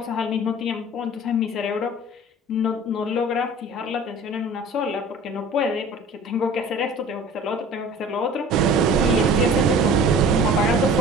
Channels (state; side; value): normal; both; correlation 0.43